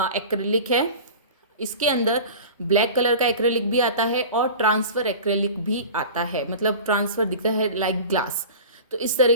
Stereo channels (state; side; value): inverted; both; correlation -0.36